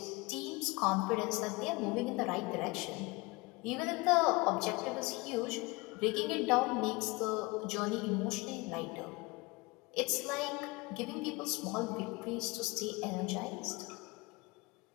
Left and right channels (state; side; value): quieter; right; 24.6 dB